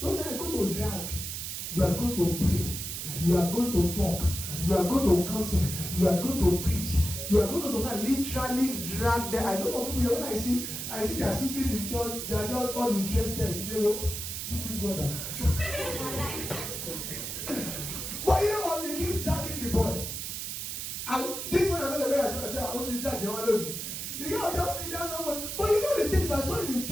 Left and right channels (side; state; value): right; noise; hiss, 5 dB below the sound